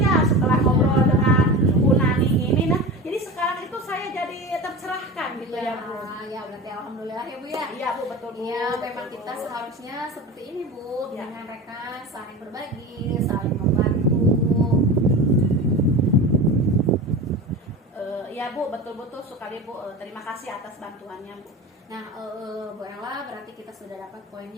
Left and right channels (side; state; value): both; normal; correlation 0.30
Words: setelah ngobrol dengan Bu Nani ini, nah jadi sekarang itu saya jadi tercerahkan gitu ya Bu. Ya berarti alhamdulillah ya Bu ya. Iya Bu, betul Bu. Iya, Betul, memang Bu. kita seharusnya seperti ini Bu, Ya. dengan rekan saling berbagi, saling membantu. Ya Bu, betul-betul sekali Bu. Terima kasih atas bantuannya Bu. Nah, Bu Ella, berarti kita sudah dapat